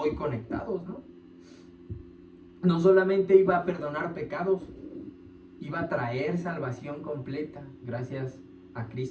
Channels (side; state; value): both; identical; correlation 1.00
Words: conectados, ¿no? No solamente iba a perdonar pecados, iba a traer salvación completa gracias a